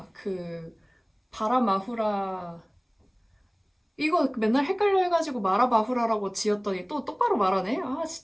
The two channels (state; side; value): identical; both; correlation 1.00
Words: 그 바라마후라 이거 맨날 헷갈려 해가지고 마라바후라라고 지었더니 또 똑바로 말하네? 아